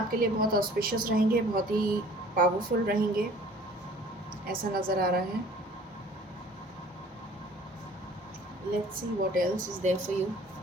लिए बहुत ऑस्पिशियस रहेंगे, बहुत ही पावरफुल रहेंगे, ऐसा नज़र आ रहा है। Let's see what else is there for you,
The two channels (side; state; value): both; normal; correlation 0.51